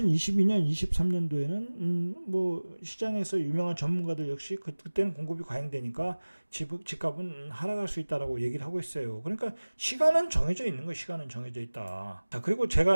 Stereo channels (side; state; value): both; inverted; correlation -1.00